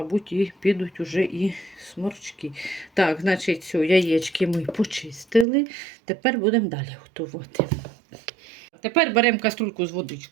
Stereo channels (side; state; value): left; drops out; at 5.5 s